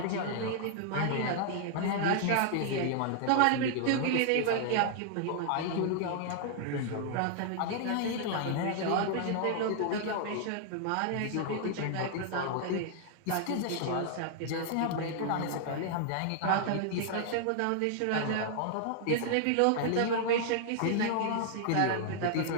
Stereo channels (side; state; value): both; different; correlation 0.00